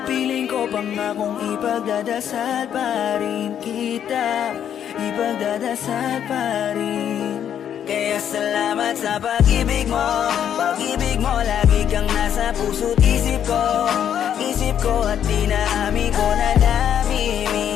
Piling ko pangakong ipagdadasal pa rin kita. Ipagdadasal pa rin. Kaya salamat sa pag-ibig mo. Pag-ibig mo lagi kang nasa puso't isip ko. Isip ko at dinaamin ko na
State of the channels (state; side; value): quieter; right; 9.4 dB